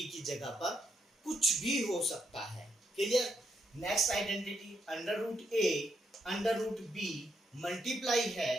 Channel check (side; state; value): both; normal; correlation 0.78